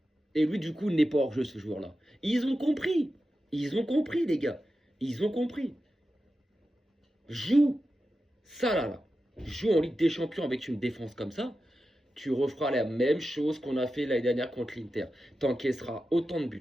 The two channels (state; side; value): normal; both; correlation 0.91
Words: Et lui, du coup, n'est pas hors jeu, ce joueur-là. Ils ont compris. Ils ont compris, les gars. Ils ont compris. Joue ça là. Joue en Ligue des Champions avec une défense comme ça. Tu referas la même chose qu'on a fait l'année dernière contre l'Inter. T'encaisseras autant de